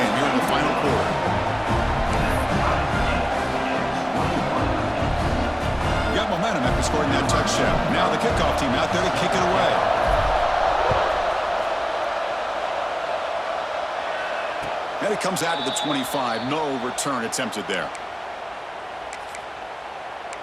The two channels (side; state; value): both; identical; correlation 1.00